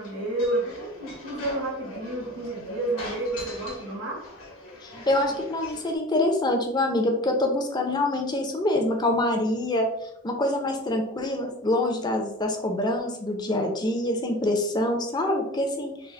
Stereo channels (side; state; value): both; normal; correlation 0.39